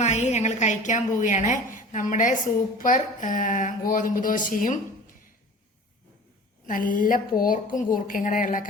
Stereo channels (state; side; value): normal; both; correlation 0.41